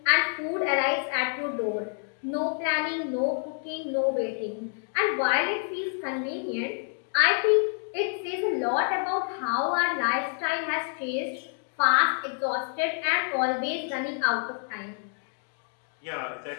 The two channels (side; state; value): right; silent; 57 dB below the other